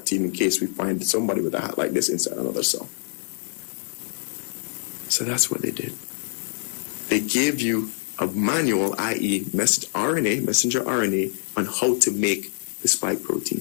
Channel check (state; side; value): silent; right; digital silence